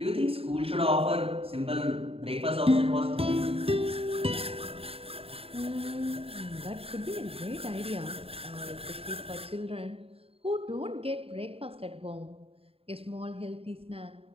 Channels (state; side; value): late; left; 0.28 ms